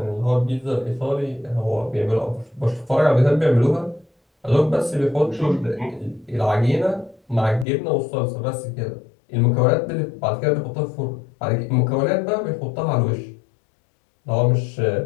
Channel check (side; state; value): right; drops out; at 7.7 s